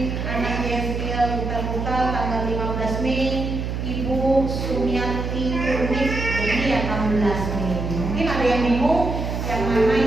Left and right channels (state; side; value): noise; right; hum, 3 dB below the sound